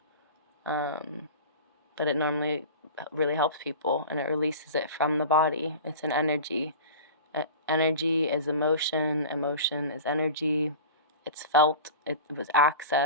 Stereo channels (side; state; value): both; inverted; correlation -0.35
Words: but it normally really helps people and it releases it from the body. It's an energy. Energy is emotion. Emotion is energy. It's felt. It was